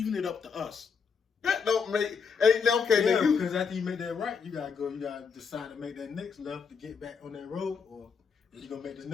it up to us. That don't make okay. Yeah, then because after you make that right, you gotta decide to make that next left to get back on that road, or you gonna make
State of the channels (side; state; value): right; quieter; 5.9 dB